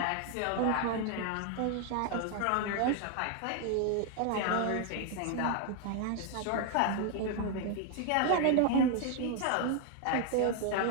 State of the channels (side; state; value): both; different; correlation 0.00